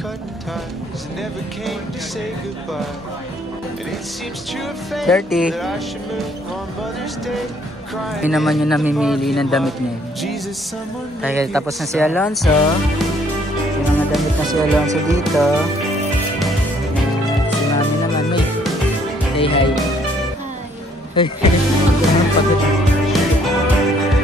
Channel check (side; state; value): both; normal; correlation 0.64